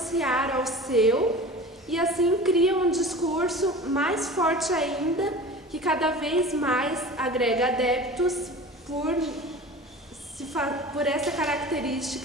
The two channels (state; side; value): normal; both; correlation 0.37